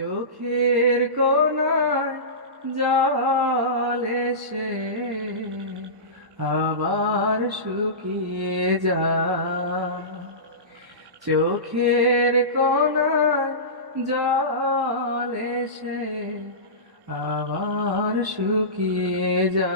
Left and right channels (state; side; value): late; left; 1.1 ms